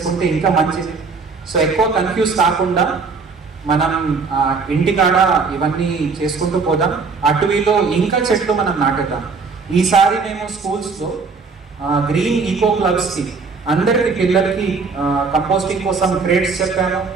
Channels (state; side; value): quieter; left; 4.7 dB